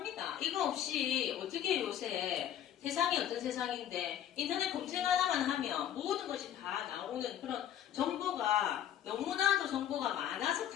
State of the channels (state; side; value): quieter; right; 10.6 dB